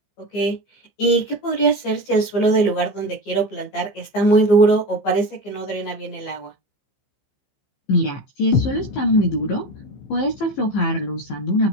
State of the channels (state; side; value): late; right; 14 ms